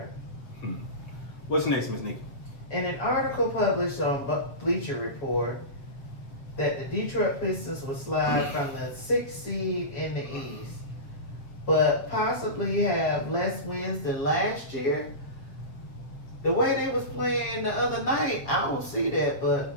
What's next, Miss Nikki? In an article published on Bleacher Report, that the Detroit Pistons will slide from the 6th seed in the East, but possibly have less wins than last year. The way they was playing the other night, I don't see that,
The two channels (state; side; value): late; right; 7.5 ms